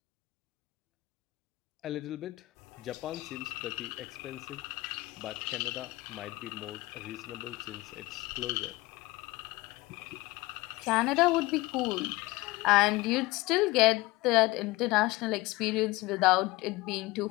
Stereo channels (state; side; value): quieter; right; 20.6 dB